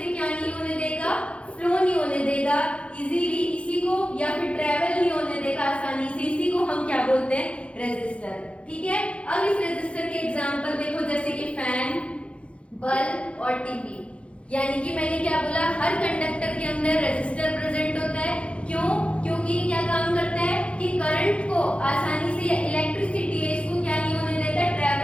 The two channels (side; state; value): right; late; 0.061 ms